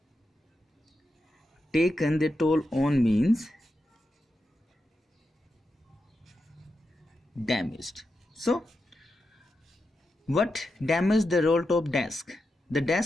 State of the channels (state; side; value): normal; both; correlation 0.88